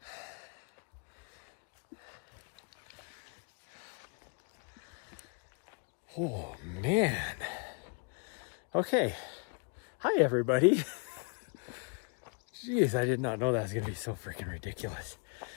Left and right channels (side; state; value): right; quieter; 37.2 dB